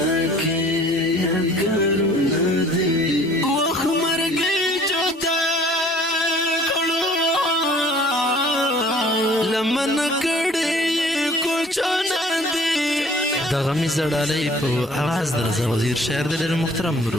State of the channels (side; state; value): both; normal; correlation 0.53